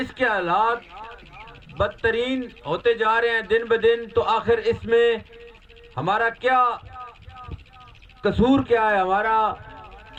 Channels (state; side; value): identical; both; correlation 1.00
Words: کے حالات بدترین ہوتے جا رہے ہیں دن بدن۔ تو آخر اس میں ہمارا کیا قصور کیا ہے؟ ہمارا